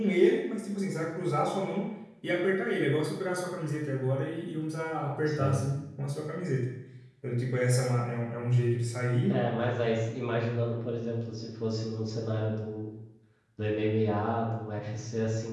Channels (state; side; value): identical; both; correlation 1.00